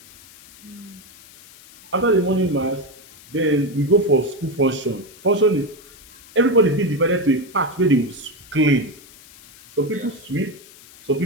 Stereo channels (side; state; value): left; noise; hiss, 22 dB below the sound